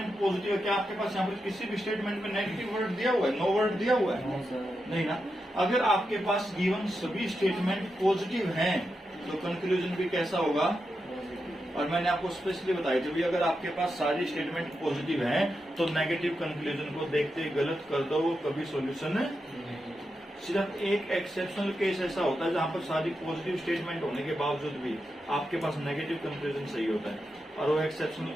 पॉजिटिव है, क्या आपके पास यहाँ पर किसी भी स्टेटमेंट में नेगेटिव वर्ड दिया हुआ है? नो वर्ड दिया हुआ है? नहीं ना। अगर आपके पास गिवन सभी स्टेटमेंट पॉजिटिव हैं तो कंक्लूजन भी कैसा होगा? और मैंने आपको स्पेशली बताया कि भाई अगर आपके पास सारी स्टेटमेंट पॉजिटिव हैं तो नेगेटिव कंक्लूजन को देखते गलत कर दो, वो कभी सॉल्यूशन। सिर्फ एक एक्सेप्शनल केस ऐसा होता है जहां पर सारी पॉजिटिव स्टेटमेंट होने के बावजूद भी आपके पास नेगेटिव कंक्लूजन सही होता है, और वो एक्सेप्शनल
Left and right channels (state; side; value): normal; both; correlation 0.87